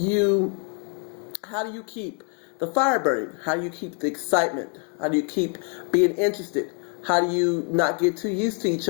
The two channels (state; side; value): quieter; right; 39.1 dB